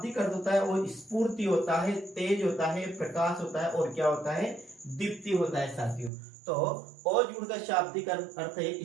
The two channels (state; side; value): drops out; left; at 6.1 s